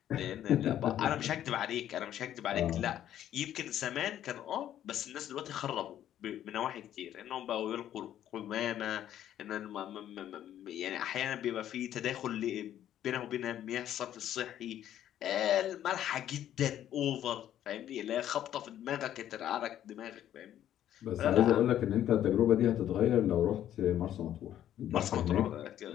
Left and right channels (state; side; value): quieter; right; 11.3 dB